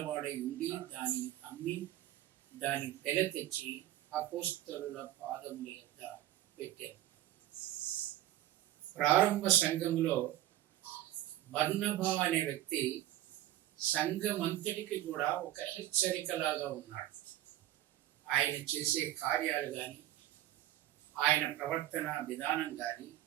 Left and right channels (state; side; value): quieter; left; 14.0 dB